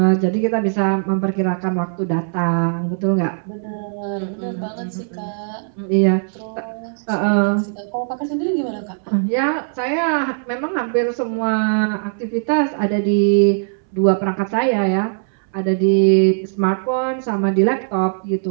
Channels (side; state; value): left; silent; 66 dB below the other